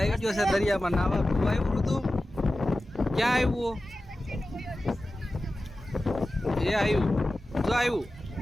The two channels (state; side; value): normal; both; correlation 0.94